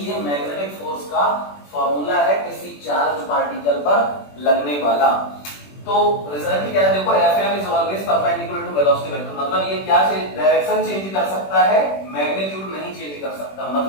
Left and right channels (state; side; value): late; right; 21 ms